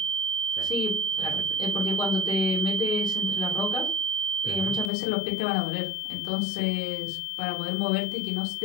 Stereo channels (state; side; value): drops out; right; at 4.9 s